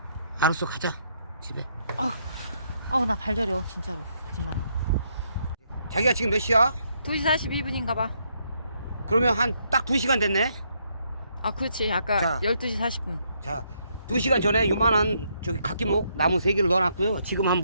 알았어, 가자 집에. 나 발저려 진짜로. 거짓말하고. 자기가 지금 몇 시야? 2시 42분인가 봐. 그러면 한 딱 2시간 됐네. 그렇지. 아까 자. 12시 40분. 자, 2시간 전에 요만한 저기 각기목 나무 3개를 넣어놨고요. 지금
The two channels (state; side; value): inverted; both; correlation -0.74